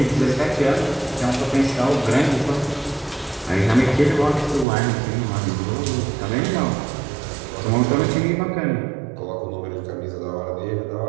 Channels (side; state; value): left; drops out; at 4.7 s